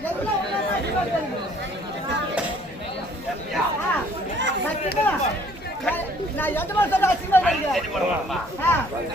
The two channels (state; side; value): normal; both; correlation 0.58